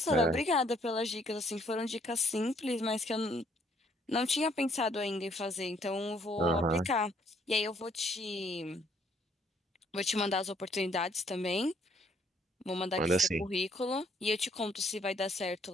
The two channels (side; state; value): both; normal; correlation 0.65